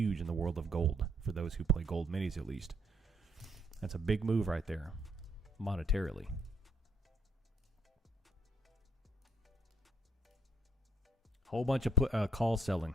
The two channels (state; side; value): normal; both; correlation 0.67